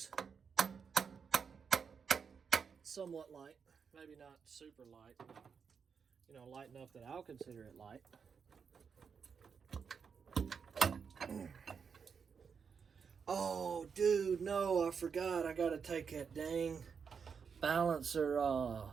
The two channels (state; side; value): quieter; left; 6.2 dB